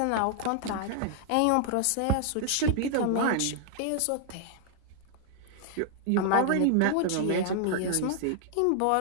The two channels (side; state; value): both; different; correlation -0.01